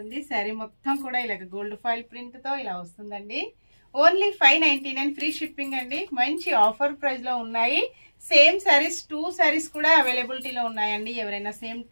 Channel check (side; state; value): both; inverted; correlation -1.00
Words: శారీ మొత్తం కూడా ఇలాగ గోల్డ్ ఫాయిల్ ప్రింట్తో ఇలా వస్తుందండి. ఓన్లీ 599 ఫ్రీ షిప్పింగ్ అండి. మంచి ఆఫర్ ప్రైస్లో ఉన్నాయి. సేమ్ శారీస్ 2 శారీస్ కూడా అవైలబిలిటీలో ఉన్నాయండి. ఎవరైనా సేమ్